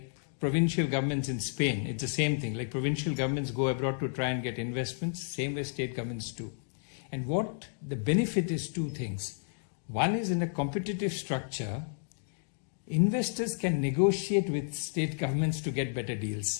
provincial governments in Spain. It's the same thing. Like provincial governments go abroad to try and get investments, same way state governments do. And what the benefit is two things. One is, in a competitive structure, investors can negotiate with state governments to get better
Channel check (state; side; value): silent; right; digital silence